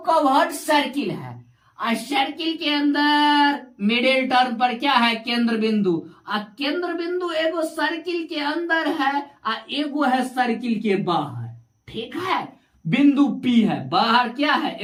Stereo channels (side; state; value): both; identical; correlation 1.00